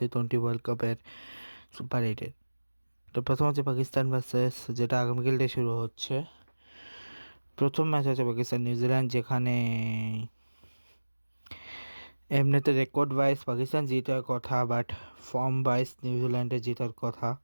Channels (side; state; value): both; inverted; correlation -1.00